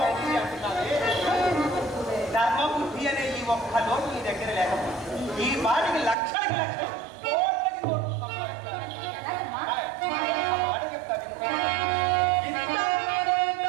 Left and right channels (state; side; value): drops out; left; at 6.2 s